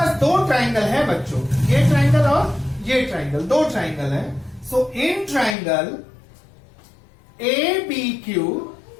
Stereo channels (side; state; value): right; drops out; at 5.6 s